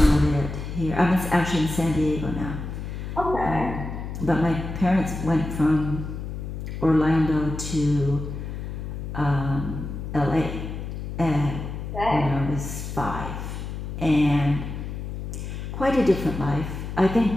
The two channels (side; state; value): left; noise; hum, 7 dB below the sound